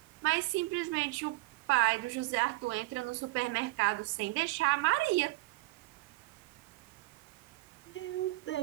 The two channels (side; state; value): left; quieter; 21.3 dB